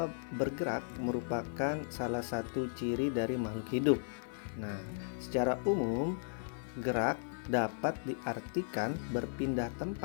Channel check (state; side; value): silent; right; digital silence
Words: bergerak merupakan salah satu ciri dari makhluk hidup? Nah, secara umum, gerak dapat diartikan berpindah